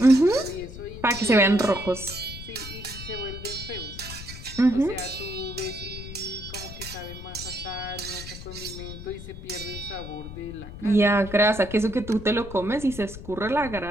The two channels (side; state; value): left; noise; rumble, 12 dB below the sound